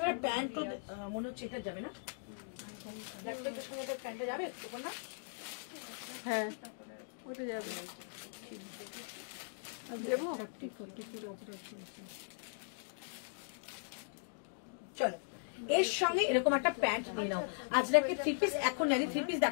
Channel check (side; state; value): right; silent; digital silence